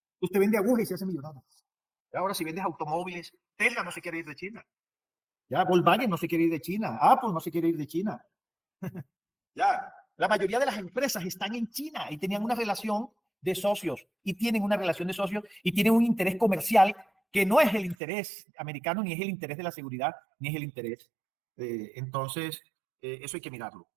Usted vende agujas y se hace millonario. Ahora, si vendes automóviles, Tesla no se quiere ir de China. Ya, Volkswagen no se quiere ir de China. Apple no se quiere ir de China. Ya, la mayoría de las empresas están en China y tenían una relación de socios, y tienen una relación de socios y tienen un interés comercial que no es el interés americano, ni es el interés de la seguridad, ni es el interés. Entonces, eso hay que mirarlo.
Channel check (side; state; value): left; drops out; at 17.9 s